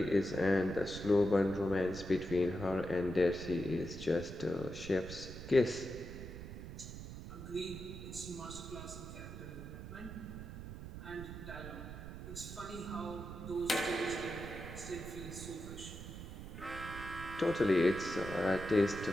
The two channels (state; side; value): noise; right; rumble, 10 dB below the sound